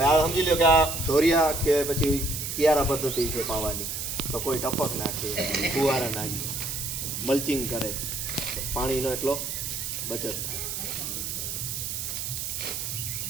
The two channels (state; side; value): noise; right; hiss, 4 dB below the sound